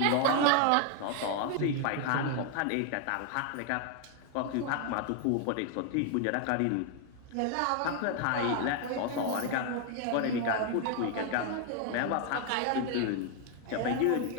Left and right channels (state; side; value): different; both; correlation 0.00